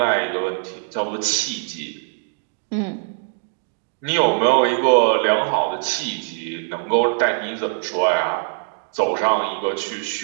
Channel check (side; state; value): left; silent; 64 dB below the other